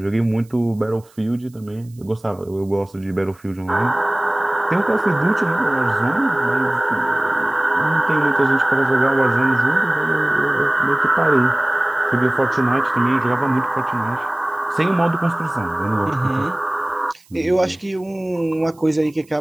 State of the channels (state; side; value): noise; right; hiss, 30 dB below the sound